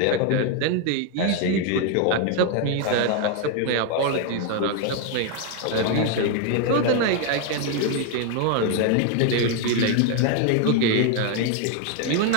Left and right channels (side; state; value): both; different; correlation 0.01